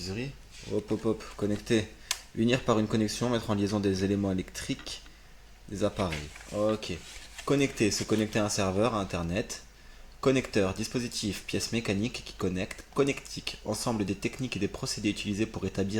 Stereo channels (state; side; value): identical; both; correlation 1.00